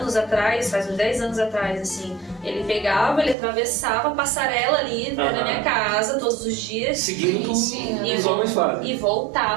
atrás, faz uns 10 anos atrás, assim, ele pegava, ele atravessava a passarela ali né, na minha casa todos os dias Seguindo o Sim, que os homens fazem. e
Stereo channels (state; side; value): drops out; left; at 3.4 s